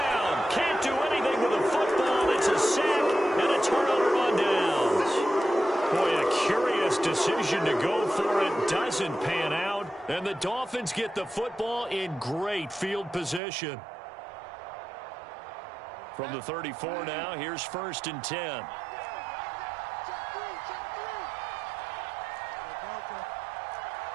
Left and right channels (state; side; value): drops out; left; at 13.4 s